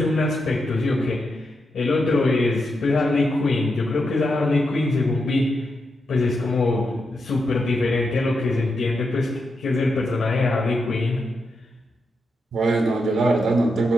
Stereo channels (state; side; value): normal; both; correlation 0.85